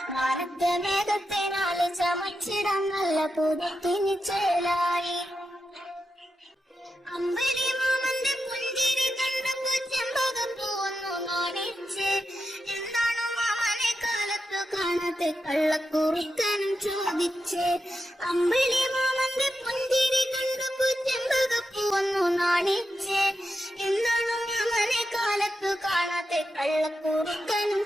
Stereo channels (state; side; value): normal; both; correlation 0.87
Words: മാനത്തെ മേഘത്തിനാല് ചമച്ചിടം നല്ല പുതിന് ചേലായി. അമ്പിളി മാമന്റെ പുഞ്ചിരി കണ്ടപ്പോ ചെമ്പകപ്പൂവന്നു നാണിച്ച്, എന്താണു മാമനെ കാലത്തു കാണാതെ കള്ളക്കുറുക്കനും ചോദിച്ച്. അമ്പിളി മാമന്റെ പുഞ്ചിരി കണ്ടപ്പോ ചെമ്പകപ്പൂവന്നു നാണിച്ച്, എന്താണു മാമനെ കാലത്തു കാണാതെ കള്ളക്കുറുക്കനും